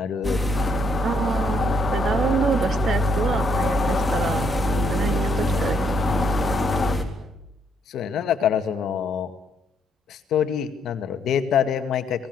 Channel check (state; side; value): normal; both; correlation 0.71